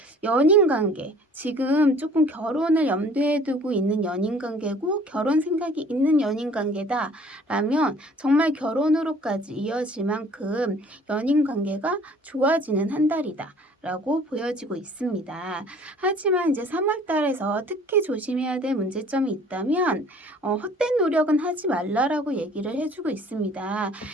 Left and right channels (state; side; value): normal; both; correlation 0.52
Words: 연인 관계, 지금 조금 결혼을 염두에 두고 있는 연인 관계고 결혼 생각이 있는 연인 관계다라면 정말 결혼으로까지 이어질 만큼 연인 관계가 좋아지는 한 달이다 라고 보여지고 있습니다. 하지만 이제 3월 달에서 특히 조심해야 될 문제점이 있다면 헛된 노력은 하지 말라라고 얘기를 해주고 있습니다.